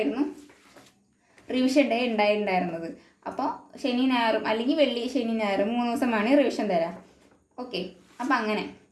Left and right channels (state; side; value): identical; both; correlation 1.00